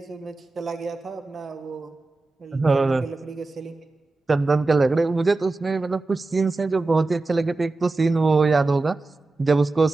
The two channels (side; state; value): left; quieter; 3.4 dB